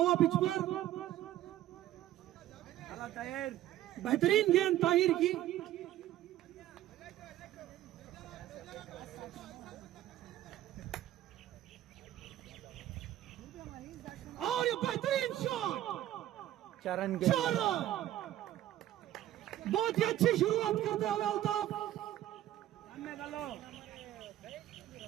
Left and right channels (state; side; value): quieter; left; 13.4 dB